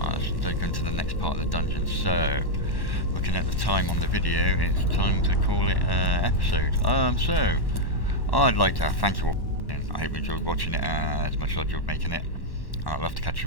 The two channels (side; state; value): right; late; 1.1 ms